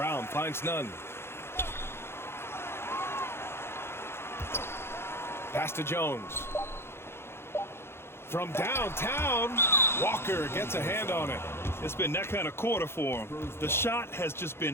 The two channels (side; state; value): right; late; 0.12 ms